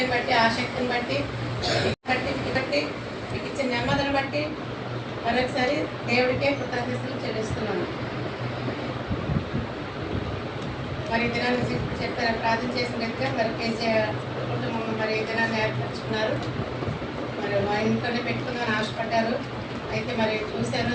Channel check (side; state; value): both; identical; correlation 1.00